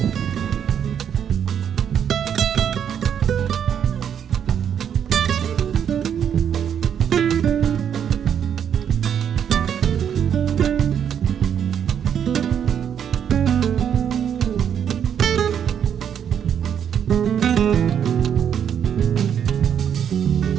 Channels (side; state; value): left; quieter; 8.6 dB